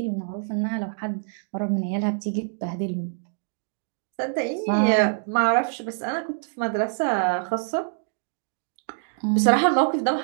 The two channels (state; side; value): silent; left; digital silence